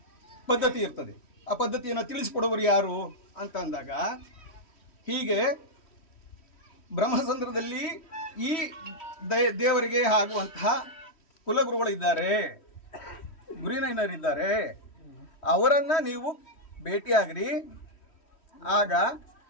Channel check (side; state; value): right; late; 3.1 ms